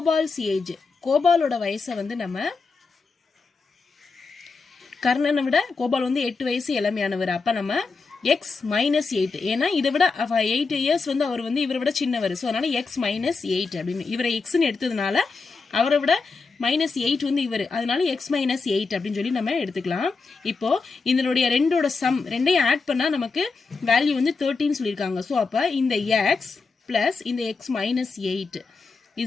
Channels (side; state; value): right; quieter; 4.4 dB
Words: ஏஜ். கோபாலோட வயசை வந்து நம்ம கர்ணனை விட கோபால் வந்து 8 வயசு இளமையானவர். அப்ப நம்ம எக்ஸ் மைனஸ் 8, ஏன்னா இதை விட 8 years வந்து அவர் வந்து இவரை விட சின்னவர். ஸோ அதனால எக்ஸ் மைனஸ் 8 அப்படின்னு இவரை எக்ஸ்ன்னு எடுத்ததுனால அவரை விட -8 வந்து இவர், அதனால x - 8 அப்படின்னு சொல்லி நம்ம எடுத்துக்கலாம். இப்போ இதனுடைய ரெண்டோட சம் ரெண்டையும் ஆட் பண்ணா நமக்கு வேல்யூ வந்து 13 சொல்லியிருக்காங்க. ஸோ அப்ப இந்த x பிளஸ் இந்த x - 8